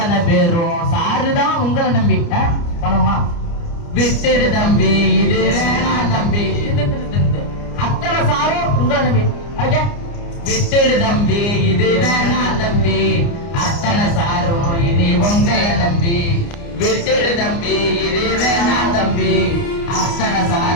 பேரும் சாருதான் உங்களை நம்பி பணமா. விட்டுடு தம்பி, இது வேணாம் தம்பி. அத்தனை சாரும் உங்களை நம்பி. விட்டுடு தம்பி, இது வேணாம் தம்பி. அத்தனை சாரும் இனி உங்களை நம்பி. விட்டுடு தம்பி, இது வேணாம் தம்பி. அத்தனை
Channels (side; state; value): right; late; 29 ms